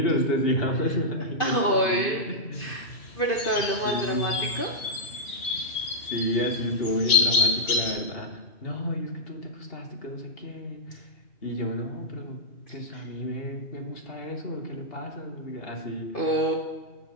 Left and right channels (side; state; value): right; late; 2.5 ms